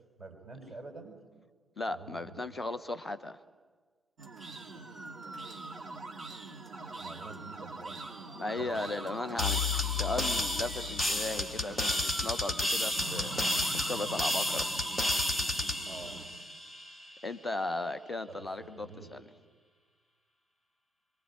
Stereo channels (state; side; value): normal; both; correlation 0.73